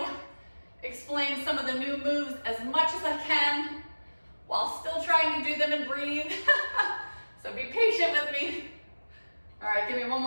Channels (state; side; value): inverted; both; correlation -1.00